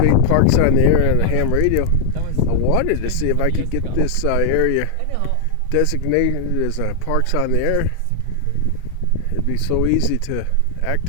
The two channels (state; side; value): different; both; correlation 0.00